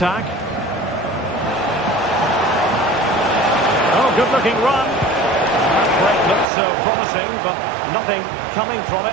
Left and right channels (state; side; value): drops out; left; at 6.5 s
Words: Oh, good-looking run. That break looked so promising, but nothing coming from